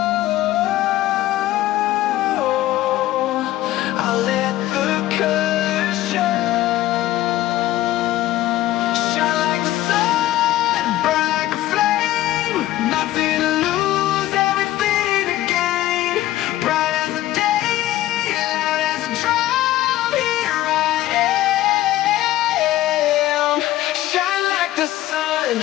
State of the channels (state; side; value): quieter; right; 14.8 dB